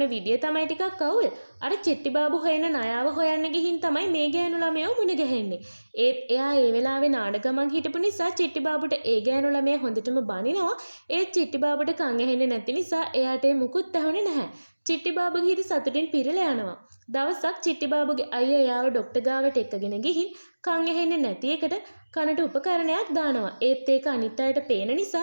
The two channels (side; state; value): both; inverted; correlation -1.00